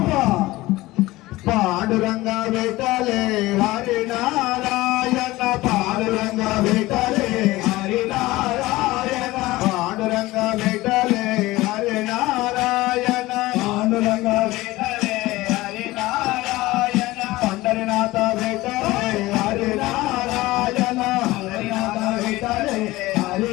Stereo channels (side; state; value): right; quieter; 18.8 dB